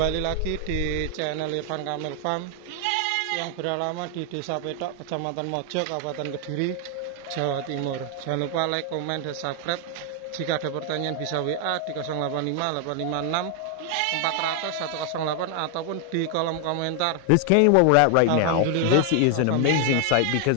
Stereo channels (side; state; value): both; different; correlation 0.00